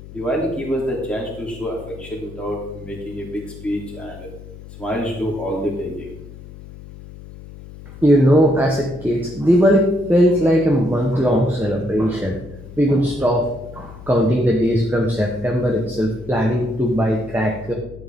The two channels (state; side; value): noise; left; hum, 16 dB below the sound